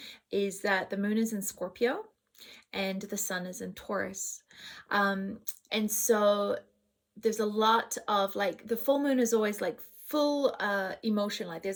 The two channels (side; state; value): both; identical; correlation 1.00